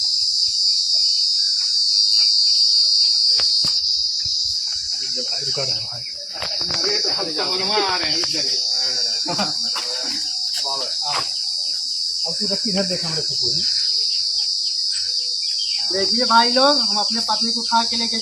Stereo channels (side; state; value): both; identical; correlation 1.00